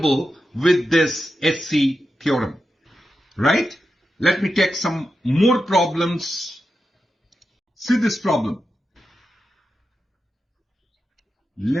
with this B.Sc theorem, right? Let me take some more problems. See this problem.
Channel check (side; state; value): both; normal; correlation 0.90